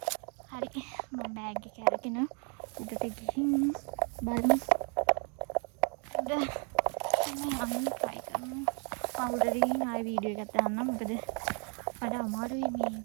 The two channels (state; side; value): quieter; left; 38.2 dB